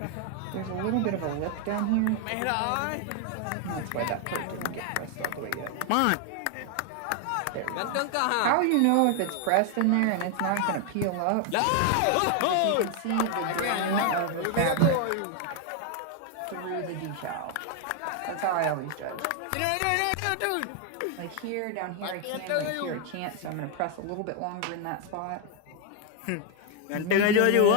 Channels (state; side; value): different; both; correlation 0.00